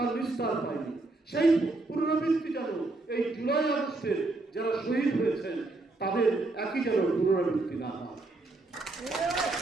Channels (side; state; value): left; quieter; 3.2 dB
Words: নিস্তার পায়নি। সেই পুনরাবৃত্তি যেন এই জুলাই আগস্টের যারা শহীদ হয়েছেন তাদের একই যেন পুনরাবৃত্তি না হয়।